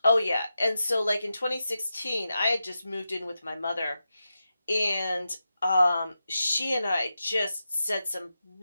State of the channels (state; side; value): inverted; both; correlation -0.90